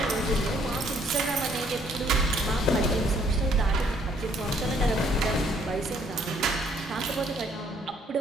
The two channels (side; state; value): both; normal; correlation 0.65